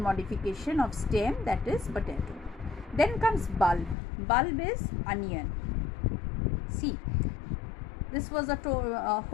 modification of stem, that is potato. Then comes bulb. Bulb is onion. See, this was a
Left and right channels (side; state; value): right; drops out; at 4.0 s